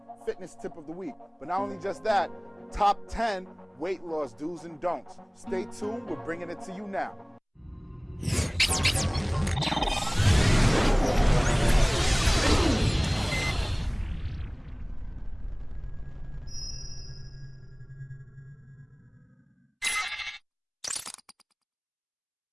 fitness tip of the week. But not only just that, top 10 weight loss do's and don'ts. Stay tuned, we're bringing it to you now.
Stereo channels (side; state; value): both; identical; correlation 1.00